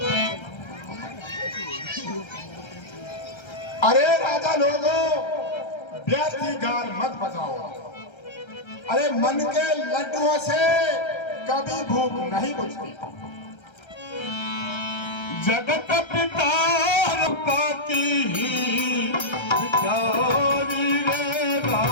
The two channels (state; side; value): late; right; 1.3 ms